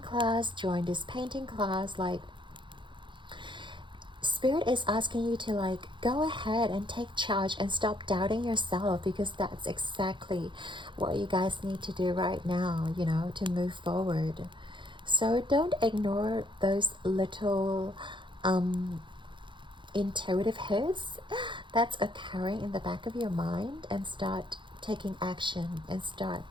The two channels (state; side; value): late; left; 0.23 ms